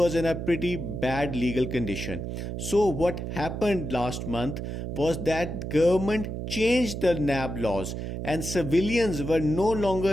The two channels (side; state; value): right; noise; hum, 5 dB below the sound